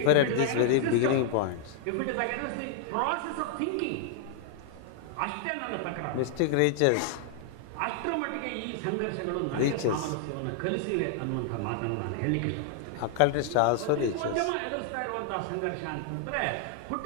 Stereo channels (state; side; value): different; both; correlation -0.01